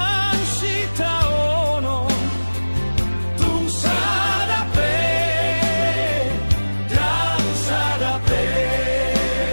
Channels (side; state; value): both; inverted; correlation -1.00